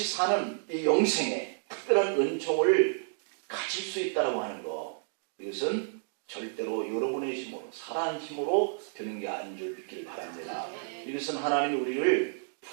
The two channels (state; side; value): silent; left; digital silence